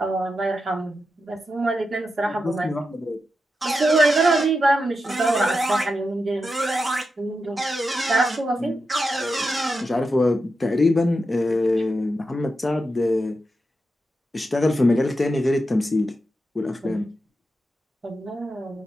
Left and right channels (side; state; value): both; normal; correlation 0.88